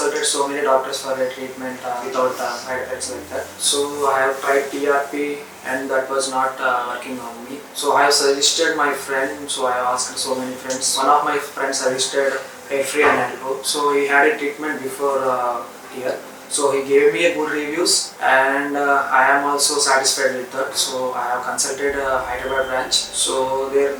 so many doctors for a treatment without side effects like that. So I have tried TRP and that was not working on me. So I have suggested my friend. So I have asked so many friends. One of my friends suggested Hairfree Hairgrow. So he had a treatment before here. So he gave me a good reviews, and I am also satisfied with that. So I have consulted Hyderabad branch. So there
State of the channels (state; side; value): identical; both; correlation 1.00